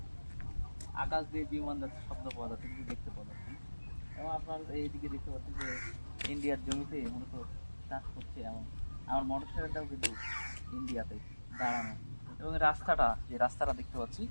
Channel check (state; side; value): inverted; both; correlation -1.00